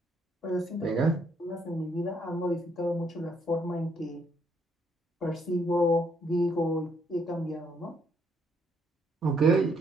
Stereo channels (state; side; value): normal; both; correlation 0.71